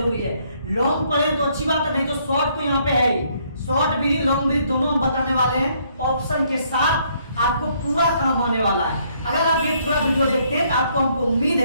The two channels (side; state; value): both; inverted; correlation -0.68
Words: है। लॉन्ग पढ़े तो अच्छी बात है, नहीं तो शॉर्ट तो यहाँ पे है ही। शॉर्ट भी लॉन्ग भी दोनों हम बताने वाले हैं, ऑप्शन के साथ आपको पूरा काम आने वाला है। अगर आप ये पूरा वीडियो देखते हैं तो आपको हमको उम्मीद